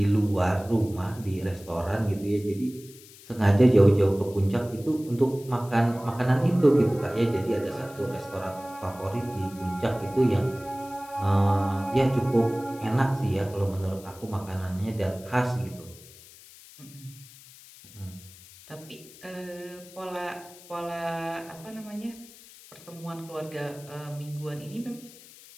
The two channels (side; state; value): left; noise; hiss, 21 dB below the sound